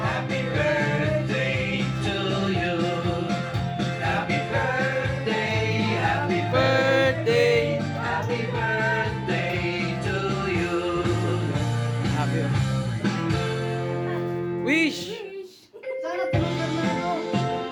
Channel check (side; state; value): both; identical; correlation 1.00